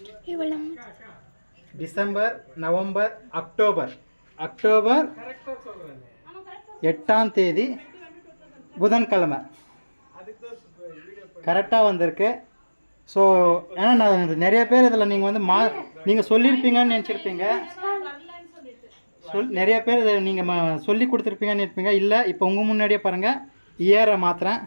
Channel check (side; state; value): both; inverted; correlation -1.00